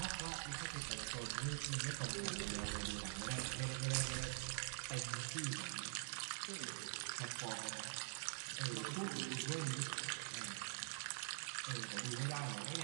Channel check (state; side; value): silent; left; digital silence